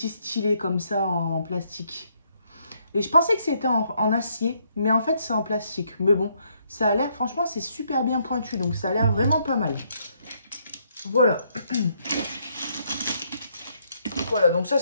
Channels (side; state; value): both; inverted; correlation -0.72